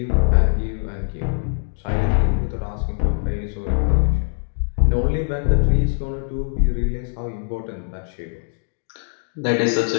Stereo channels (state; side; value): silent; right; digital silence